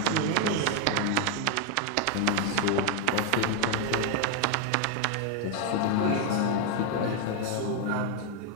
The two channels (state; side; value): different; both; correlation 0.01